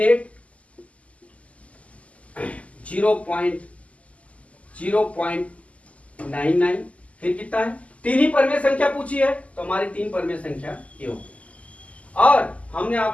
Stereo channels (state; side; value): late; right; 0.067 ms